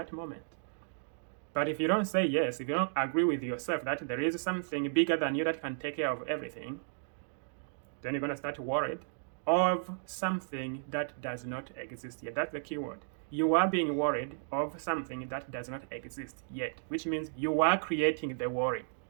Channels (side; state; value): left; silent; digital silence